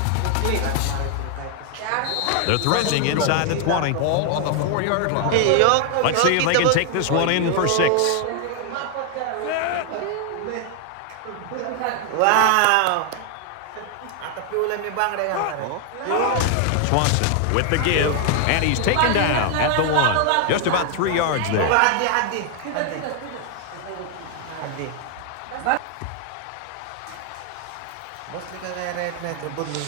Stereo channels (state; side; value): different; both; correlation 0.00